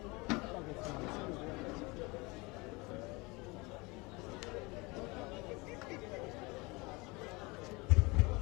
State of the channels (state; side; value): quieter; right; 25.5 dB